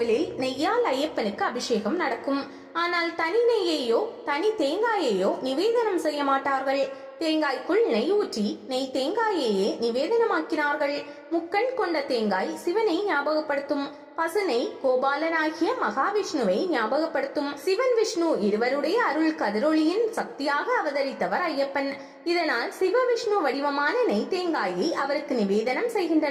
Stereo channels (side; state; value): both; identical; correlation 1.00